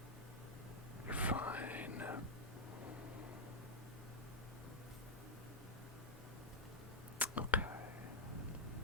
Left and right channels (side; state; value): both; normal; correlation -0.03